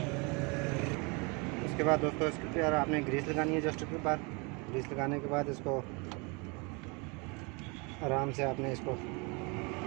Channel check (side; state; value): left; quieter; 30.1 dB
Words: उसके बाद दोस्तों इसके ऊपर आपने ग्रीस लगानी है। जस्ट के ऊपर ग्रीस लगाने के बाद इसको आराम से आपने इसको